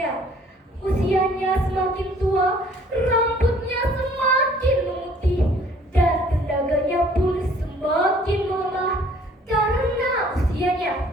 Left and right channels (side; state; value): both; normal; correlation 0.57